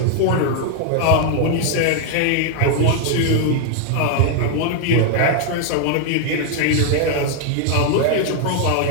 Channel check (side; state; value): both; different; correlation 0.00